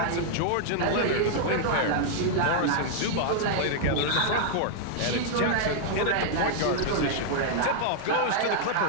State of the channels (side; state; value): both; different; correlation -0.01